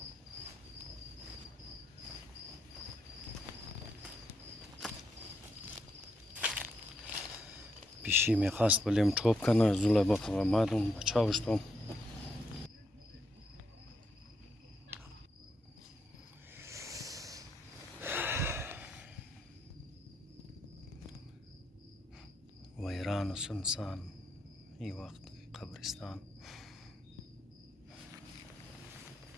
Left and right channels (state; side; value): normal; both; correlation 0.79